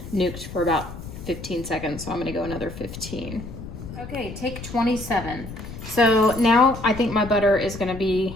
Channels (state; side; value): noise; left; rumble, 11 dB below the sound